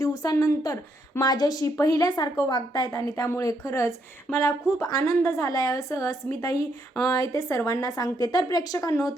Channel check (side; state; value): both; normal; correlation 0.75